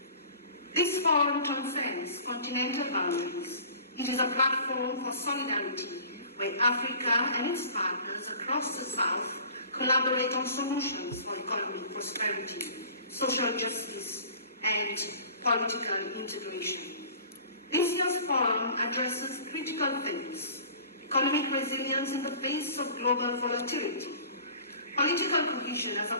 This forum transcends continental boundaries. It is a platform for solidarity, where Africa and its partners across the South collaborate on solutions for economic prosperity, social justice, and political integration. This year's forum addresses critical themes: economic resilience in the face of global volatility, political cohesion as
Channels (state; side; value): inverted; both; correlation -0.45